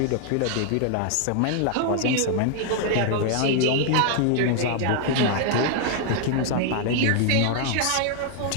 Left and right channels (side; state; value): both; different; correlation 0.00